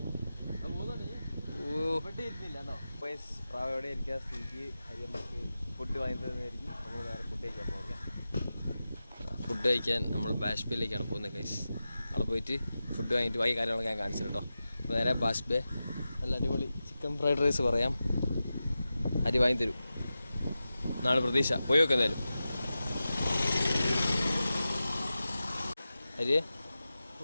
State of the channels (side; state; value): both; inverted; correlation -0.93